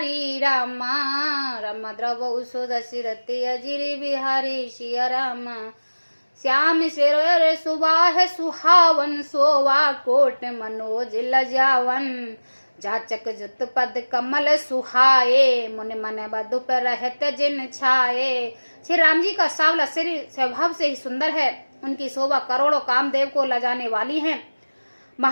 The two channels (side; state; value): both; inverted; correlation -1.00